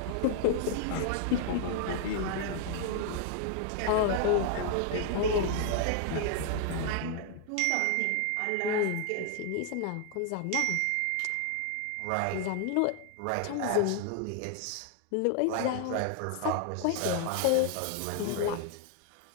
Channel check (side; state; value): both; different; correlation 0.00